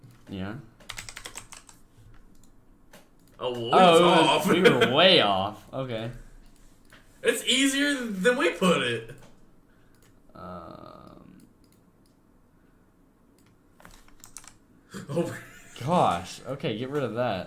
Yeah. Off. We were way off. Okay. It's easier than we put it. Gosh. Okay, get rid of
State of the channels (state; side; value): identical; both; correlation 1.00